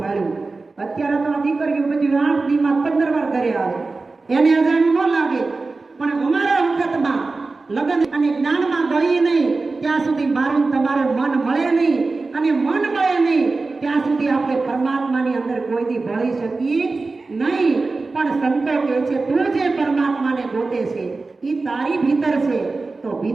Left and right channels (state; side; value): quieter; left; 3.7 dB